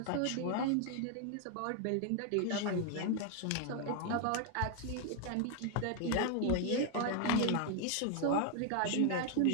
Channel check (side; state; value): both; different; correlation 0.00